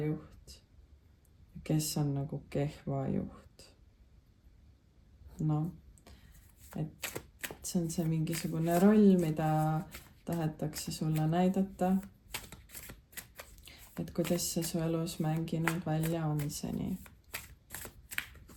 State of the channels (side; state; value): both; identical; correlation 1.00